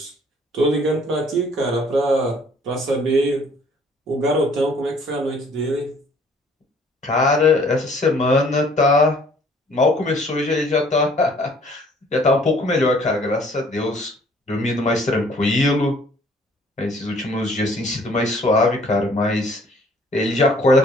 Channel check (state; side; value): normal; both; correlation 0.58